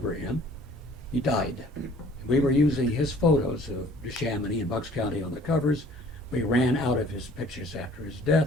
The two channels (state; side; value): normal; both; correlation 0.54